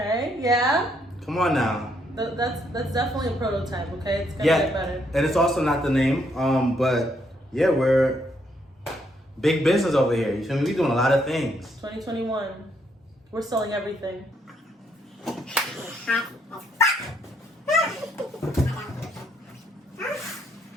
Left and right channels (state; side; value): normal; both; correlation 0.73